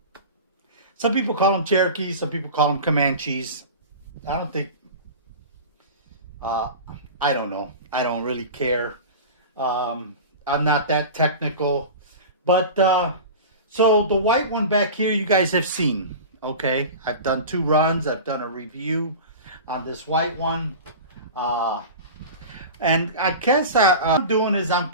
some people call them Cherokees, some people call them Comanches. I don't think, I don't know. I don't really care. I'm not that technical. But, so the white one back here you guys have seen, okay? I've done 2 runs. I've done a review on this white one. And I guess what I'm doing is I'm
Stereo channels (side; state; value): both; inverted; correlation -0.32